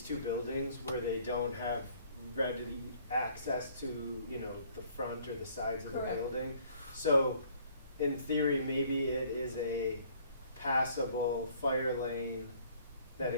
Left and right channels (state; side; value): inverted; both; correlation -0.59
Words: 2 buildings where they don't have ready access to, the front or the sides of the Correct. building. So in theory, maybe it is a passable fire lane that